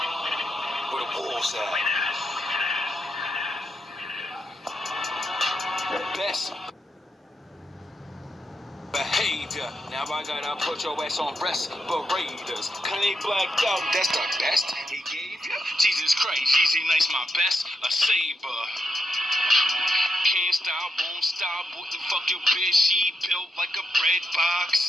Where the wolves at? The best. savior. Now I gotta put your ass on respirators. Kanye blacked out, that's the best he gave you. Jesus Christ, Yeezy nice, my best, a saber. Can't stop, won't stop, wouldn't fuck your bitch, she built like a bread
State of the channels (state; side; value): normal; both; correlation 0.83